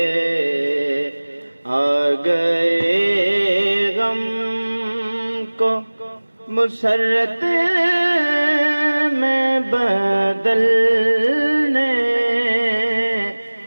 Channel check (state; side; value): inverted; both; correlation -1.00